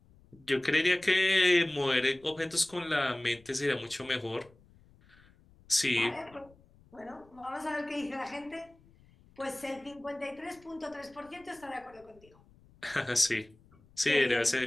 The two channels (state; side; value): noise; left; rumble, 28 dB below the sound